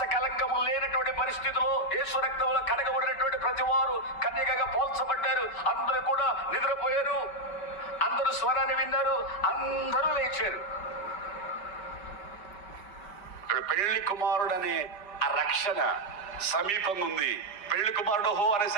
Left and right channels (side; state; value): right; late; 5.2 ms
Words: కలంకము లేనటువంటి పరిస్థితిలో యేసు రక్తంలో కడగబడినటువంటి ప్రతివారు కన్యకగా పోల్చబడ్డారు. అందరూ కూడా నిద్రపోయారు. అందరూ స్వరాన్ని విన్నారు. అందరూ లేచారు. పెళ్లి కుమారుడు అనే ఆ రక్షణ సమీపంగా ఉంది. పెళ్లి కుమారుడు హో